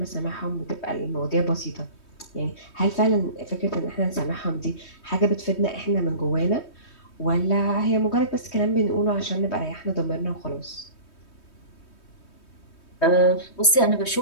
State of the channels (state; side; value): late; right; 3.2 ms